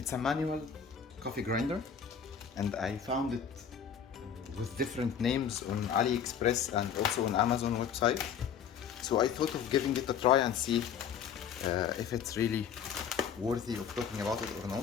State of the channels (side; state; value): right; quieter; 7.7 dB